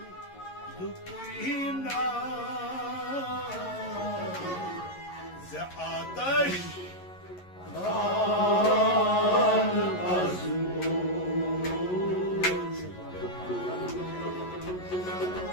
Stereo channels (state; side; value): late; right; 11 ms